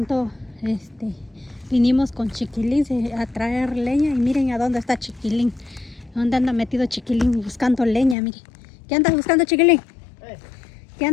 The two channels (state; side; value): drops out; right; at 8.2 s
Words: vinimos con Chiquilín a traer leña y miren a dónde está Chiquilín. ¿Dónde anda metido Chiquilín buscando leña? Miren. ¿Qué andas buscando, Chiquilín? ¿Qué